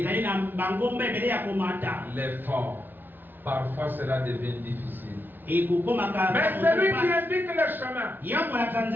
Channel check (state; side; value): late; left; 0.092 ms